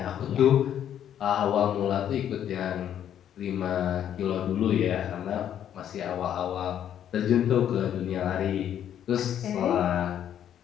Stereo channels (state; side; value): quieter; right; 10.0 dB